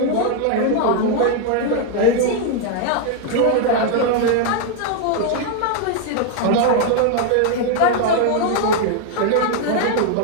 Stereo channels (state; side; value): different; both; correlation 0.00